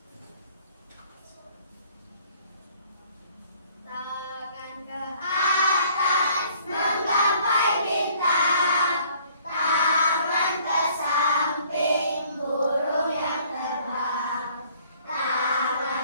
Tangan ke atas menggapai bintang, tangan ke samping burung yang terbang,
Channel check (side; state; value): both; inverted; correlation -0.58